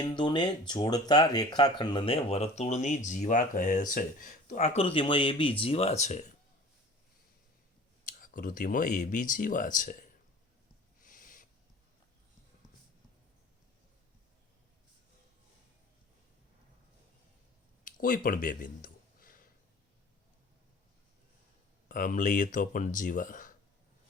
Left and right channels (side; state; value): both; normal; correlation 0.44